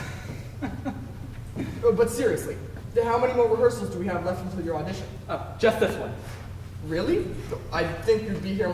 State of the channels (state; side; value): identical; both; correlation 1.00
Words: But seriously, how many more rehearsals do we have left until your audition? Oh, just this one. Really? I think you'd be here